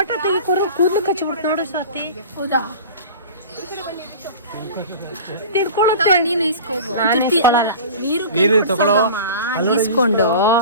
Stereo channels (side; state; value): both; inverted; correlation -0.37